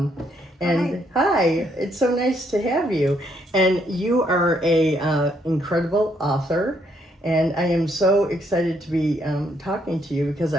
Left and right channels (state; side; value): normal; both; correlation 0.72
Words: And hi, it's so nice to have you. And you are a incredible author, and I am so excited to be talking to you, because